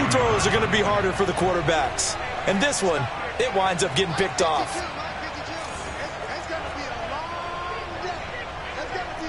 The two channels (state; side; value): identical; both; correlation 1.00